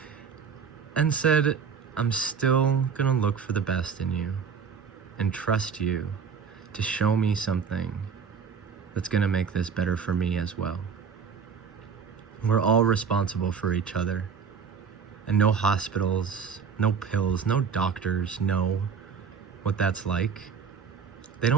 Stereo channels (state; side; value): quieter; left; 6.2 dB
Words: and said, I'm still gonna look for the best in you and trust you to show me something that's gonna make this better for me as well. We're all responsible for each other, and no hospitals, no pills, no doctors know what that's like. They